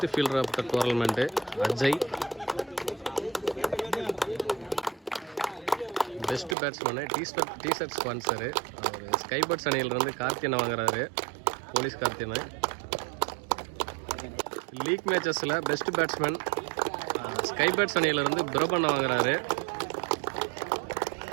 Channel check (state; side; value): drops out; left; at 6.6 s